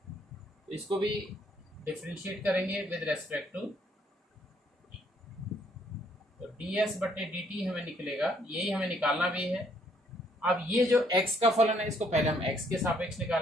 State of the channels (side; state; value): both; normal; correlation 0.67